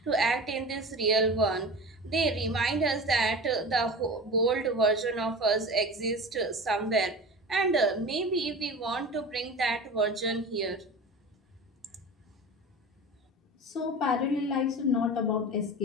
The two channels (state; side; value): normal; both; correlation 0.33